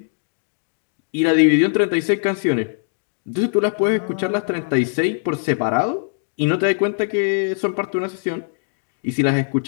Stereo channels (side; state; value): right; silent; digital silence